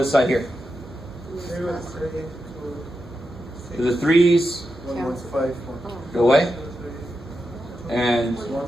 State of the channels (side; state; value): both; normal; correlation 0.88